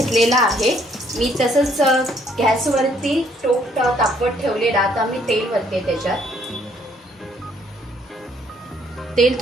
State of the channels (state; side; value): normal; both; correlation 0.66